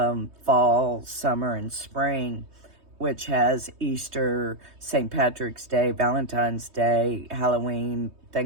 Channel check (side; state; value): left; late; 3.2 ms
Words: summer, and spring, which has Easter, St. Patrick's Day, Valentine's Day, Halloween,